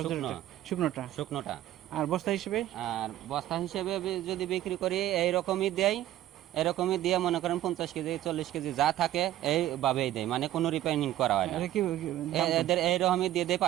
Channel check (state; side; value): quieter; left; 13.5 dB